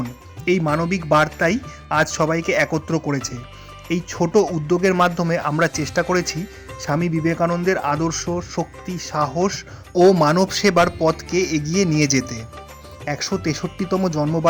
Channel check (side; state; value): both; identical; correlation 1.00